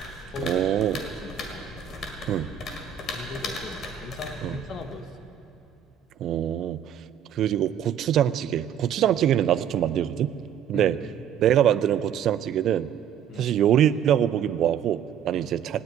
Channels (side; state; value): left; quieter; 9.1 dB